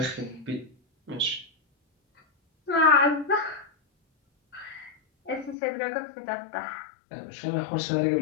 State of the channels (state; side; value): drops out; right; at 5.6 s